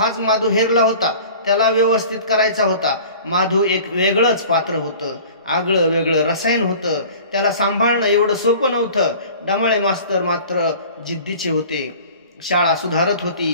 माधू हेरला होता. त्याला व्यवस्थित करायचा होता. माधू एक वेगळंच पात्र होतं. आगळं वेगळं रसायन होतं. त्याला सांभाळणं एवढं सोपं नव्हतं. डमाळे मास्तर मात्र जिद्दीचे होते. शाळा सुधारत होती,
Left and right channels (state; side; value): inverted; both; correlation -0.44